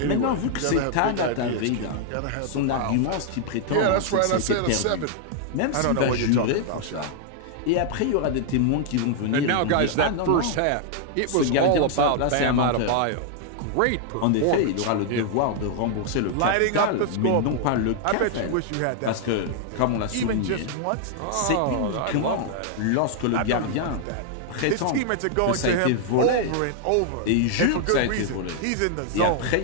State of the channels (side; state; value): both; different; correlation 0.00